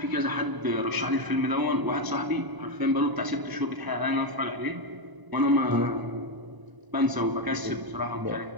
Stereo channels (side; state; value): left; late; 1.0 ms